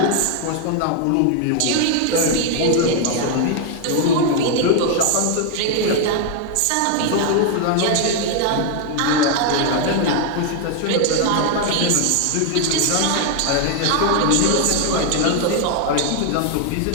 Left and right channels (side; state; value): both; different; correlation 0.00